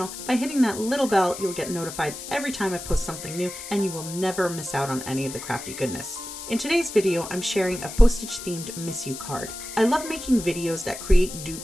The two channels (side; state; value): left; noise; hiss, 10 dB below the sound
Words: By hitting that little bell, you'll get notified every time I post something new, and you will never miss out on any of the crafty goodness. In today's video, I'm sharing a postage themed Miss You card. I love making videos that create